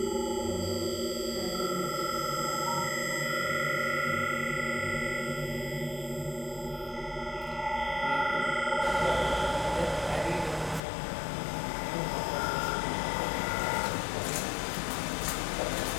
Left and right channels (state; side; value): drops out; right; at 10.8 s